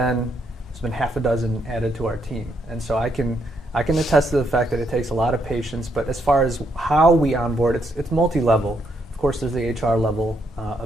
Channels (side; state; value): both; normal; correlation 0.75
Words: there's been half a dozen added to our team. And so I can attest to the fact that it takes a lot of patience, but as far as how we onboard, it's multi-level. Of course, there's the HR level